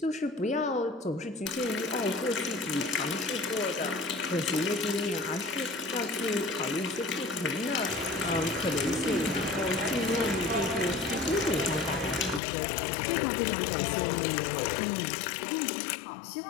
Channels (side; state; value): right; drops out; at 12.4 s